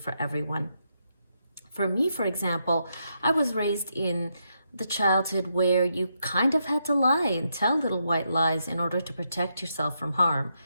everyone. For me, for example, I was raised in the childhood where you kind of had to lie and tell little white lies in order to protect yourself from harm.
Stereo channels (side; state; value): both; inverted; correlation -0.81